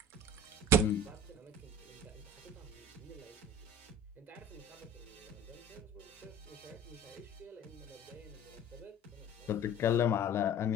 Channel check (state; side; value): normal; both; correlation 0.43